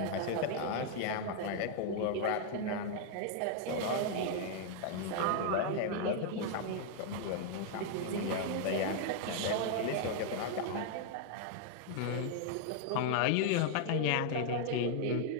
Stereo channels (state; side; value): different; both; correlation 0.00